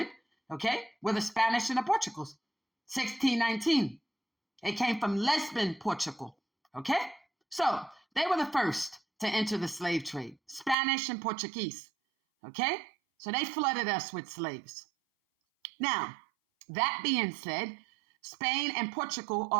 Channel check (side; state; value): left; drops out; at 10.8 s